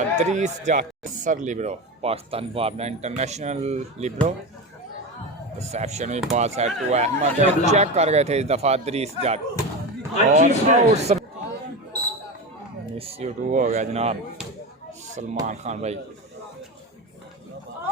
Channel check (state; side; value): normal; both; correlation 0.22